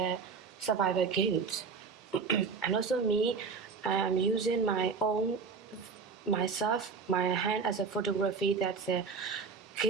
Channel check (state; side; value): quieter; left; 5.2 dB